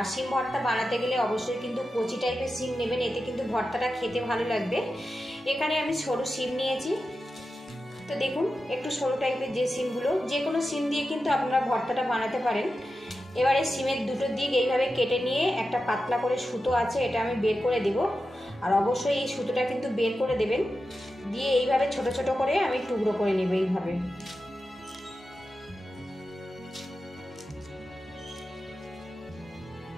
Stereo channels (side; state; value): both; normal; correlation 0.91